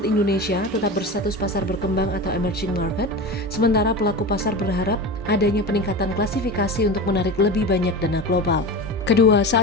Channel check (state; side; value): normal; both; correlation 0.28